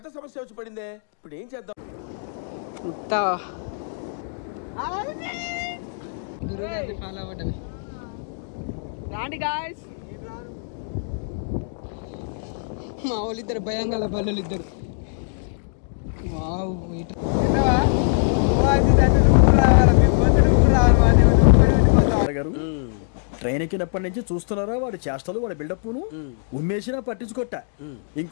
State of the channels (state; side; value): silent; right; digital silence